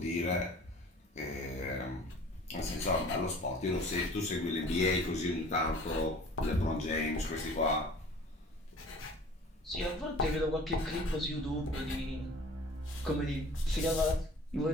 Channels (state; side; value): normal; both; correlation 0.46